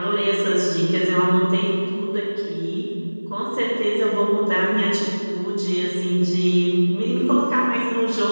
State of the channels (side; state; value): both; inverted; correlation -1.00